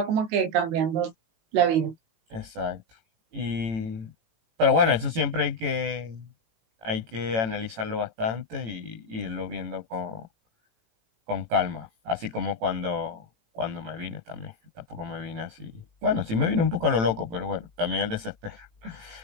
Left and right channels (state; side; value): late; left; 18 ms